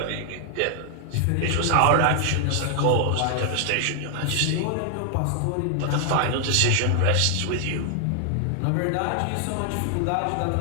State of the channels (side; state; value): both; different; correlation 0.00